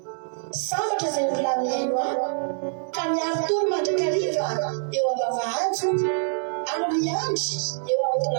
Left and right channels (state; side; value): silent; left; digital silence